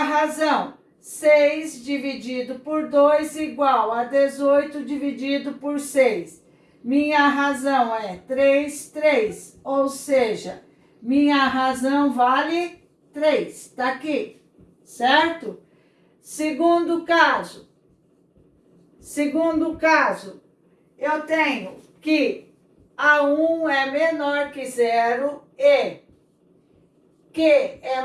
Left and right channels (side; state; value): both; identical; correlation 1.00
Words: razão 6 dividido por 2 igual a 18 dividido por 6. Minha razão é 3, 3, ou seja, minha razão vale 3, tá aqui, certo? Segundo caso, eu tenho que A1 é menor que zero e Q